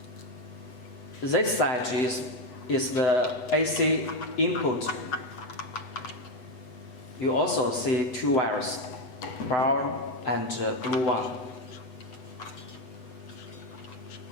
This side is the AC input. You also see two wires, brown and blue one.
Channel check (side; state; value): right; late; 8.1 ms